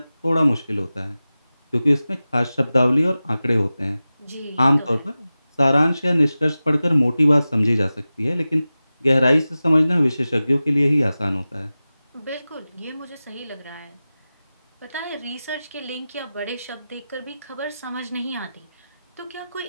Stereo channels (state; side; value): inverted; both; correlation -0.95